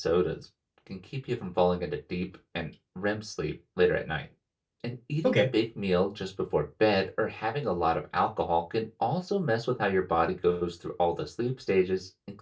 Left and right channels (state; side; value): identical; both; correlation 1.00